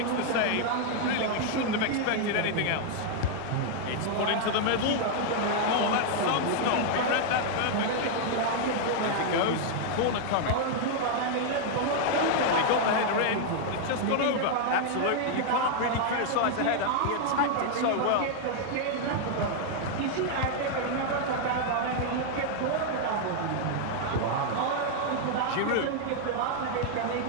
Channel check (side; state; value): both; different; correlation 0.00